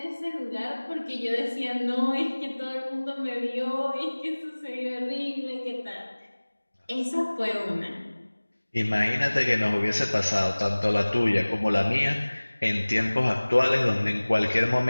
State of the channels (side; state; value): both; inverted; correlation -1.00